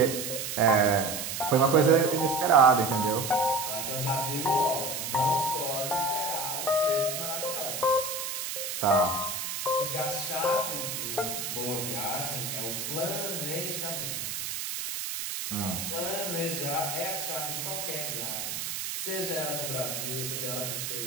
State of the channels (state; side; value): noise; right; hiss, 4 dB below the sound